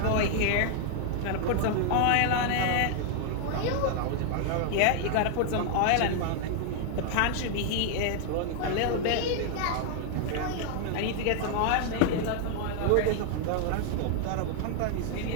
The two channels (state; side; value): different; both; correlation 0.00